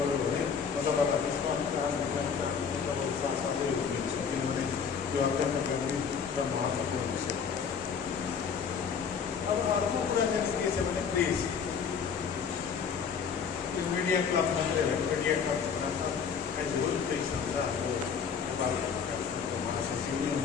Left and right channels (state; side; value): quieter; right; 6.5 dB